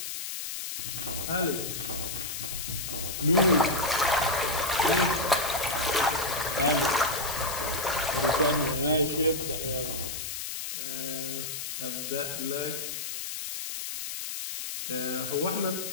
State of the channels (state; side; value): noise; left; hiss, 5 dB below the sound